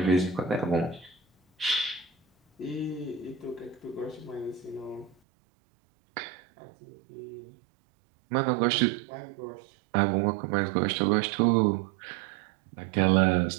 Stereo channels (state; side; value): drops out; left; at 5.2 s